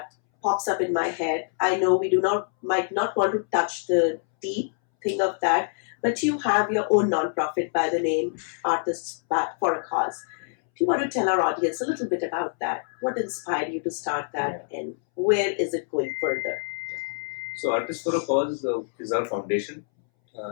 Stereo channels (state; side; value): silent; right; 61 dB below the other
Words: pops up in my head. I know we might not want to touch the deep thing of that, but you have your own nonprofit by the name Artists for a Cause. Do you want to tell our audience a little bit about that? What inspired you to start that, and where is it going further? So, Artists for a Cause is our foundation,